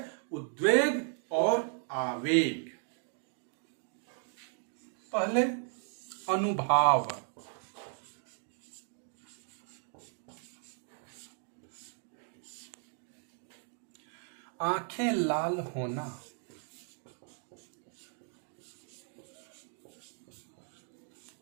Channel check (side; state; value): left; silent; 54 dB below the other